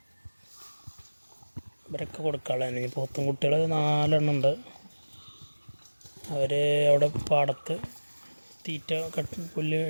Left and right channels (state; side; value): inverted; both; correlation -1.00